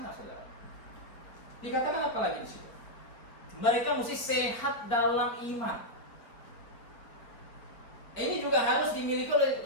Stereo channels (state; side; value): late; right; 4.4 ms